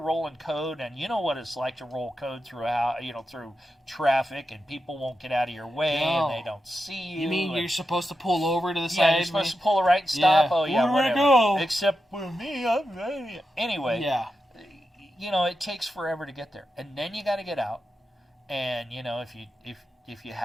code, and you know what it's like to roll code through traffic, and people won't get out of your way, and they don't see you. You mean you're supposed to pull over to the side? Yeah, you're supposed to pull a right and stop. Yeah. Oh, yeah, Where do I whatever. go? Except for me. Anyway. Yeah. It takes forever to get there. And then you got to get out. And, if you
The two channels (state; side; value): normal; both; correlation 0.89